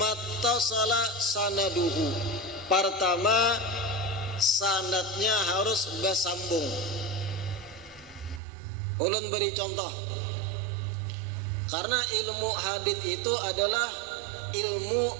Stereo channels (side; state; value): left; drops out; at 8.4 s